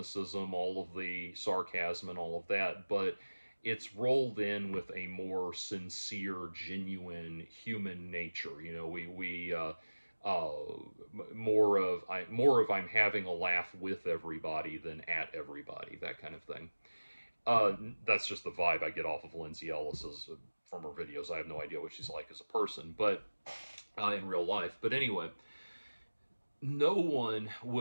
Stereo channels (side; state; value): both; inverted; correlation -1.00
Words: all of the sarcasm, and all of that, but it's rolled in with a more sincere, genuine human nature. More of I'm having a laugh with everybody than at everybody, that kind of thing. That's just the vibe I get off of Lindsay Ellis's from her videos. I have no idea what she's like as a person, but in real life. But anyway, no one